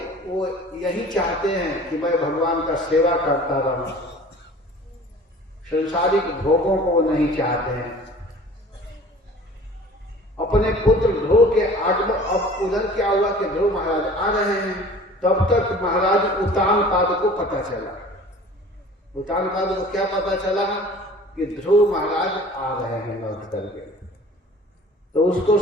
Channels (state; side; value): normal; both; correlation 0.46